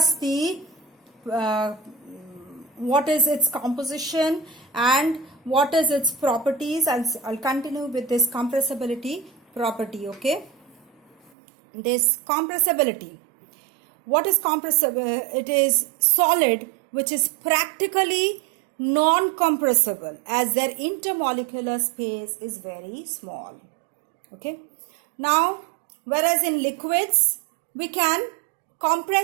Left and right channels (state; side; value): drops out; left; at 11.3 s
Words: the what is its composition and what is its properties. I'll continue with this compressibility property. Okay, this compressibility. What is compressible? It is solid which is practically non-compressible as their intermolecular space is very small. Okay. Now, whereas in liquids, we can